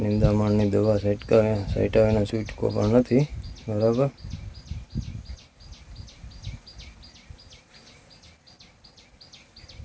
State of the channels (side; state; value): both; identical; correlation 1.00